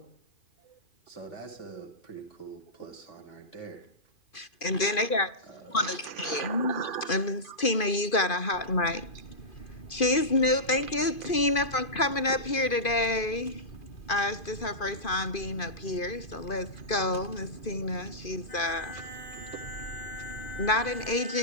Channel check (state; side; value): late; right; 2.5 ms